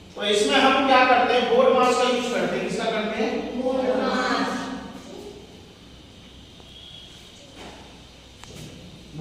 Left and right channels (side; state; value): both; identical; correlation 1.00